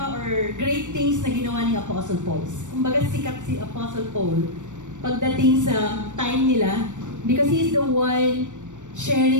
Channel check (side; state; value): left; late; 0.85 ms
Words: or great things na ginawa ni Apostle Paul. Kumbaga sikat si Apostle Paul pagdating sa time nila because he is the one